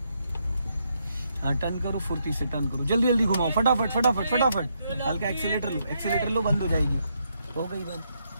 हाँ, टर्न करो, फुर्ती से टर्न करो, जल्दी जल्दी घुमाओ, फटाफट फटाफट फटाफट, हल्का एक्सीलेटर लो, एक्सीलेटर लो, बंद हो जाएगी, हो गई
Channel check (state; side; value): inverted; both; correlation -0.78